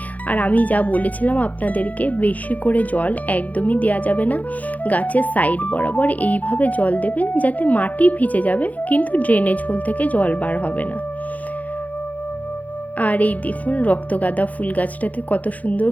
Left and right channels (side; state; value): right; late; 0.076 ms